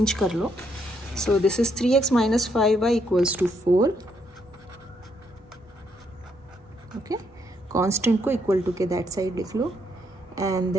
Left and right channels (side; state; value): both; normal; correlation 0.75